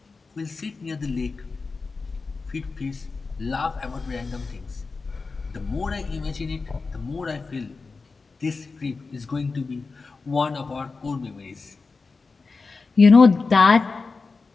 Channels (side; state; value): right; quieter; 4.2 dB